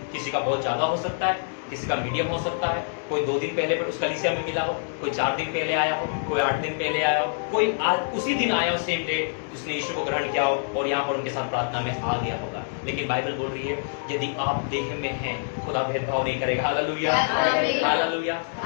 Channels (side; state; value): right; silent; digital silence